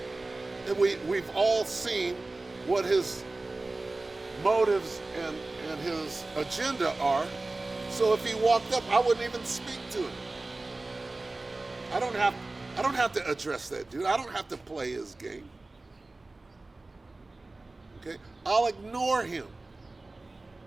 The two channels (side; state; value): left; quieter; 3.1 dB